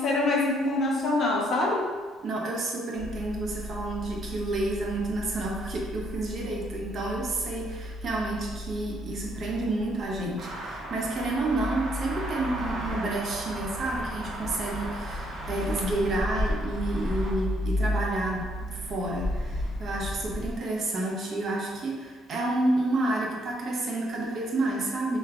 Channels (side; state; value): both; normal; correlation 0.71